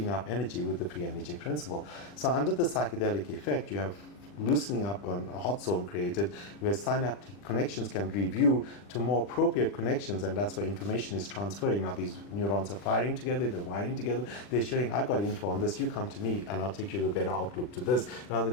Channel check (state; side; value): late; right; 40 ms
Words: up energy with the free energy principle. So under the psychedelic effect, you have loosening up on a hot zone created where synaptic connections can review to more appropriate connections, and that's where information is transferring. Now these neurons are firing together, they're wiring together, they're sharing, I got info on this, you come to me and I'll take you to a better outlook to this, rather